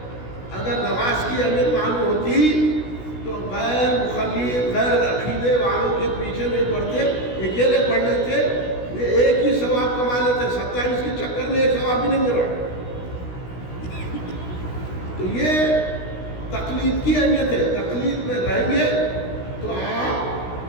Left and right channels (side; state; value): right; late; 16 ms